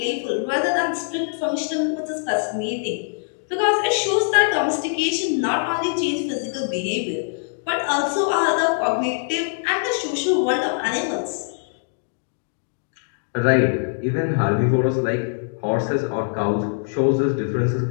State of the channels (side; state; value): right; silent; digital silence